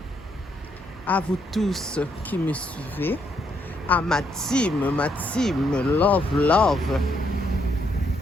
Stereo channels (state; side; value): normal; both; correlation 0.74